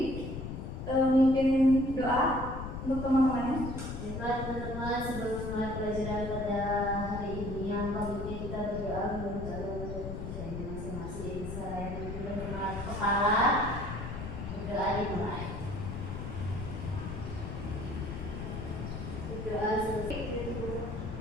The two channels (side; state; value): left; noise; rumble, 6 dB below the sound